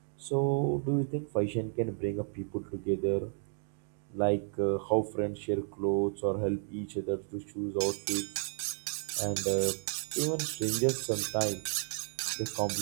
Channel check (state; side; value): silent; left; 56 dB below the other